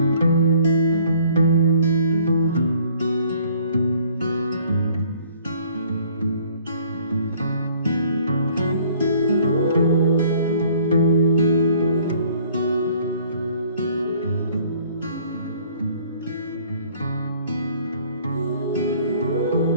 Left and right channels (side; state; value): both; inverted; correlation -0.58